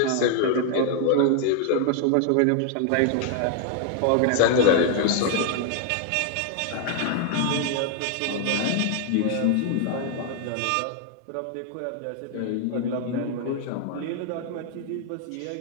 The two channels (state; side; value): different; both; correlation 0.00